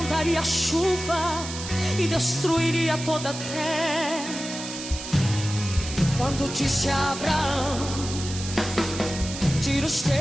chuva e destruiria toda a terra. Quando disse a Abraão: tira os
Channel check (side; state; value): right; noise; hiss, 9 dB below the sound